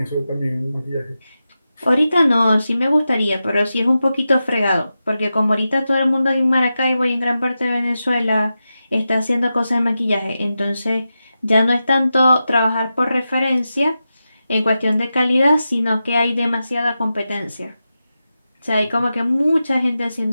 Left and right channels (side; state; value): both; inverted; correlation -0.91